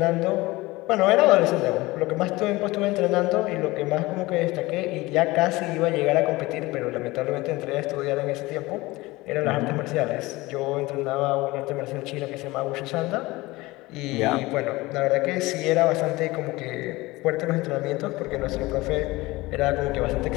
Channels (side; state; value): right; quieter; 20.7 dB